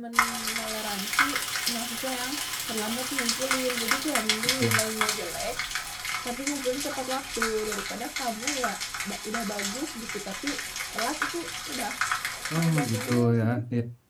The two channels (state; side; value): identical; both; correlation 1.00